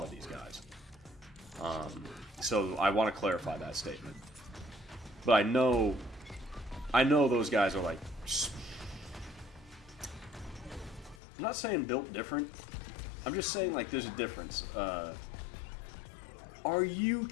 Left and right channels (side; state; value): right; drops out; at 11.2 s